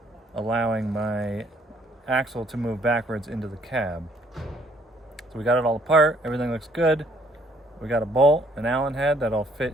allowing my axle to move backwards into the cab. So we got it all apart, everything looks good. We got a bolt, an Allen head that'll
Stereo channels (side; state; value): both; normal; correlation 0.65